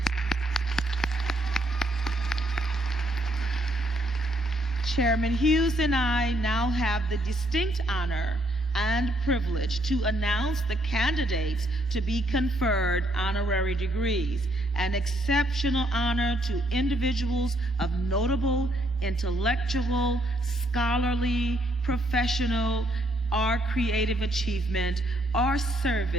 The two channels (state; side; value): normal; both; correlation 0.71